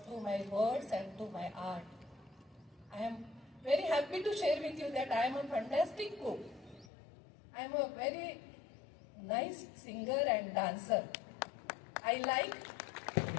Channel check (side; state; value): right; drops out; at 6.9 s